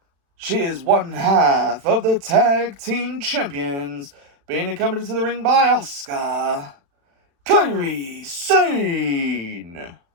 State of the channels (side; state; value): left; late; 36 ms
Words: she is one half of the tag team champions, being accompanied to the ring by Asuka, Kairi Sane.